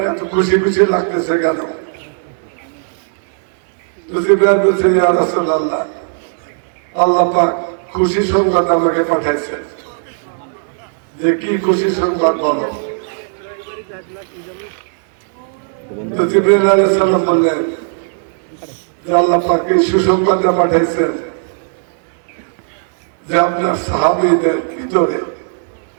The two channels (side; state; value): left; silent; digital silence